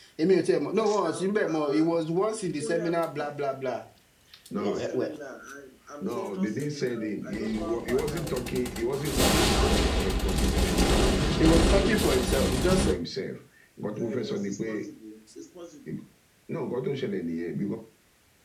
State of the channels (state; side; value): identical; both; correlation 1.00